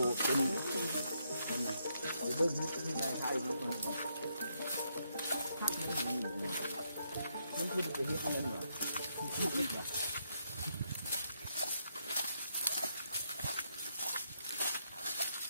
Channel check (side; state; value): both; inverted; correlation -0.77